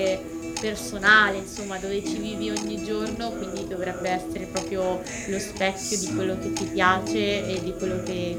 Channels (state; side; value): identical; both; correlation 1.00